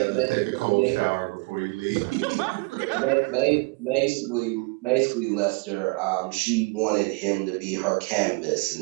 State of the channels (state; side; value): quieter; left; 29.0 dB